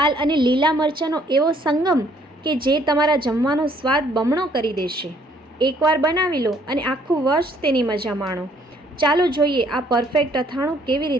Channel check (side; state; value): both; normal; correlation 0.63